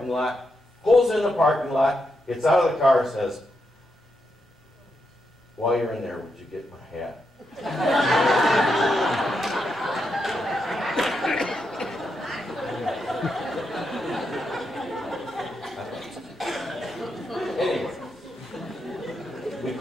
lot, pulls in the parking lot, gets out of the car and says, "While you're in there, would you get my hat?" Anyway, we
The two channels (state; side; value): normal; both; correlation 0.83